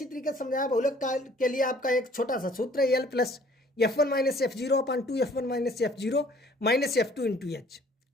तरीके से समझाया। बहुलक के लिए आपका एक छोटा सा सूत्र है, L plus F1 minus F0 upon 2 F1 minus F0 minus F2 into H.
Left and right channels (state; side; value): normal; both; correlation 0.56